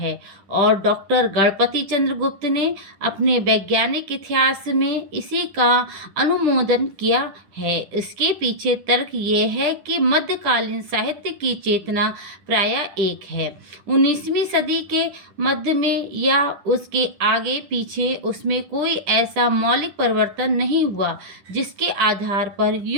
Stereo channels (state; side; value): late; left; 10 ms